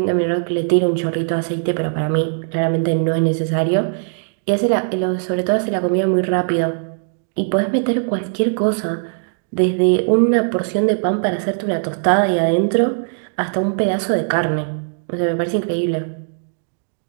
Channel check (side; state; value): left; silent; 66 dB below the other